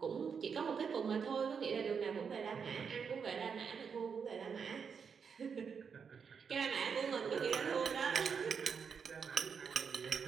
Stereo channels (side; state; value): left; quieter; 6.3 dB